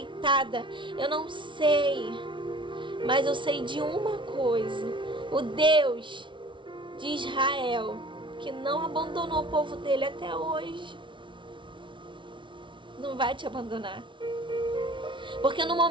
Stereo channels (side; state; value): left; late; 0.24 ms